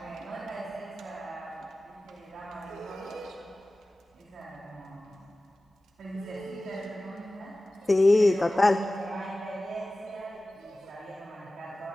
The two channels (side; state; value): both; normal; correlation 0.97